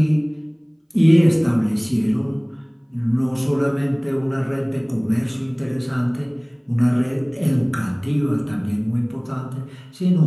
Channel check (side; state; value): both; identical; correlation 1.00